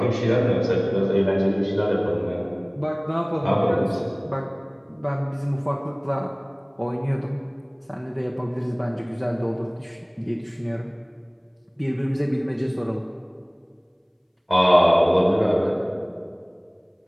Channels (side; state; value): both; identical; correlation 1.00